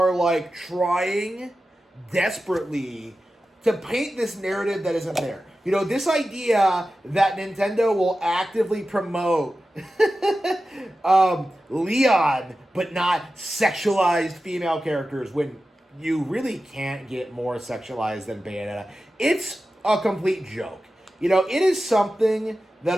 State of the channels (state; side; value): normal; both; correlation 0.93